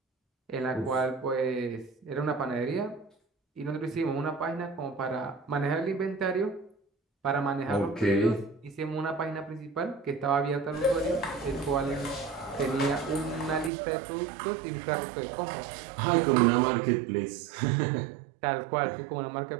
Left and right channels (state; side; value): drops out; left; at 13.7 s